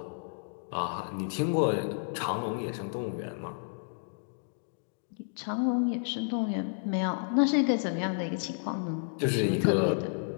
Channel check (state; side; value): silent; right; digital silence